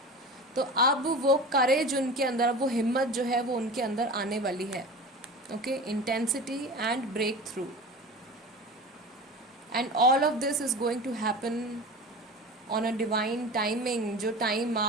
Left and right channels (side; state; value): both; normal; correlation 0.33